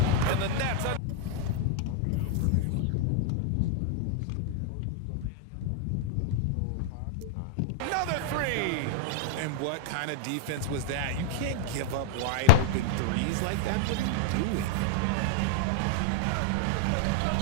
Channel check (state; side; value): different; both; correlation 0.00